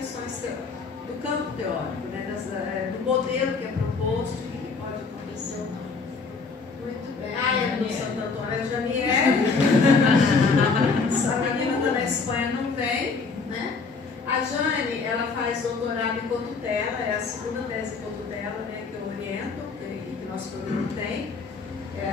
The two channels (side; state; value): right; quieter; 4.6 dB